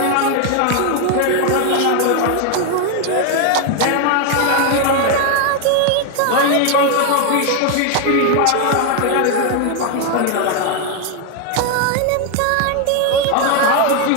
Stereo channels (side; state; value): both; different; correlation 0.01